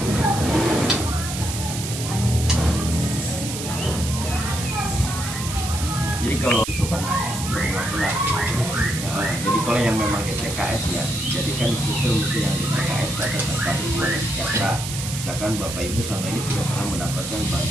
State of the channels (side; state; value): right; noise; hiss, 7 dB below the sound